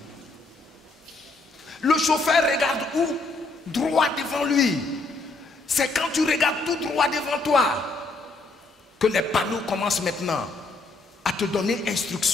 Le chauffeur regarde où? Droit devant lui. C'est quand tu regardes tout droit devant toi que les panneaux commencent maintenant à te donner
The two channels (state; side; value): quieter; right; 3.4 dB